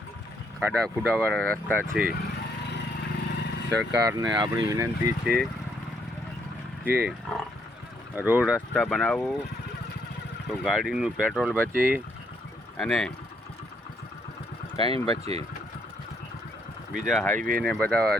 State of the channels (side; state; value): both; normal; correlation 0.72